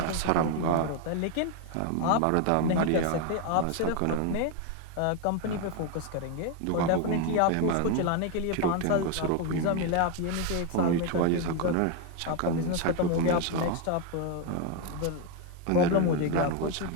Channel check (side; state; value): both; different; correlation 0.01